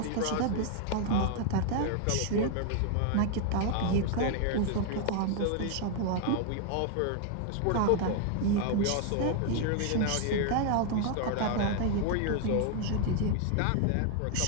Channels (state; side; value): different; both; correlation 0.00